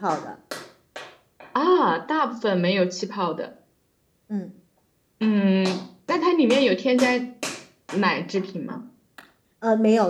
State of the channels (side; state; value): both; identical; correlation 1.00